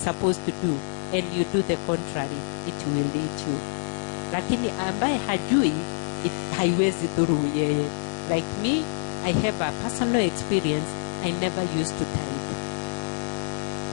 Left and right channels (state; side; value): silent; right; digital silence